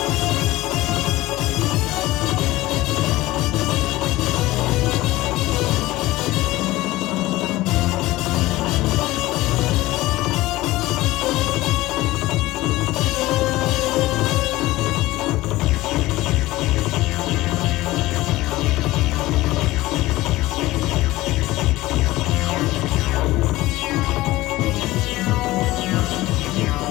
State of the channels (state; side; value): quieter; right; 18.1 dB